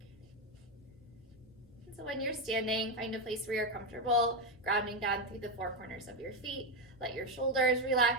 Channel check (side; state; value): both; normal; correlation 0.08